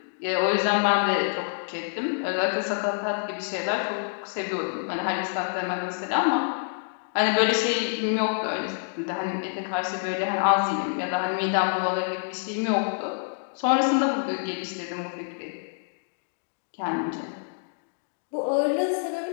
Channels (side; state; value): right; silent; digital silence